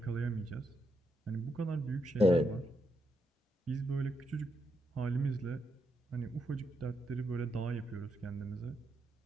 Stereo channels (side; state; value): both; normal; correlation 0.81